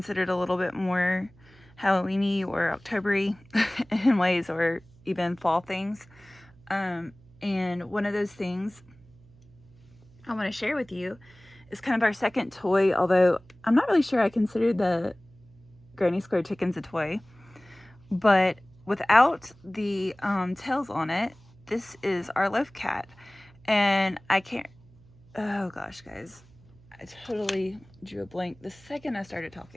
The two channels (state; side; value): noise; right; hum, 26 dB below the sound